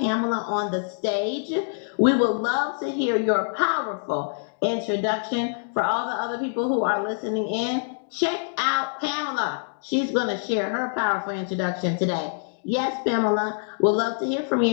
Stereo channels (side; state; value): right; silent; digital silence